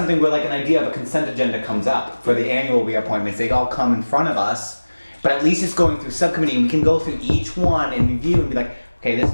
where like an idea of a consent agenda comes up for the annual reappointments. They all come in front of us, but at least it's going through subcommittee and we can go through each one and review and be like, okay, this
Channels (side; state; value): both; inverted; correlation -1.00